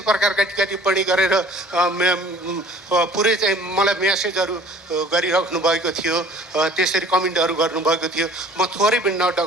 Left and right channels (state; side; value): normal; both; correlation 0.50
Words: प्रकारका टिप्पणी गरेर पुरै चाहिँ मलाई मेसेजहरू गरिराख्नु भएको थियो, त्यसरी कमेन्टहरू गर्नुभएको थियो। म थोरै पनि